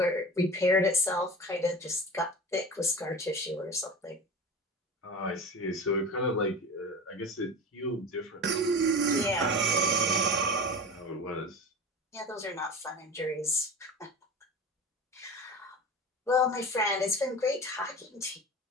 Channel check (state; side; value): normal; both; correlation 0.33